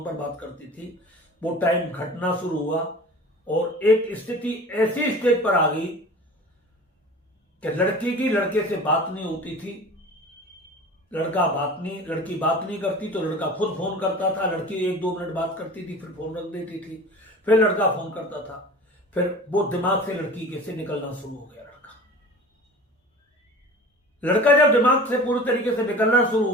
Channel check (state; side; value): normal; both; correlation 0.39